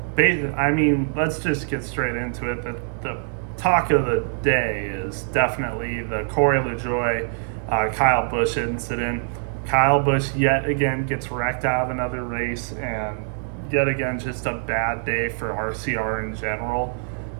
let's just get straight into it. The talk of the day is definitely the Corey Lajoie, Kyle Busch incident. Kyle Busch yet again gets wrecked out of another race, and yet again just a bad day for RCR in general.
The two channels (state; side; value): silent; left; digital silence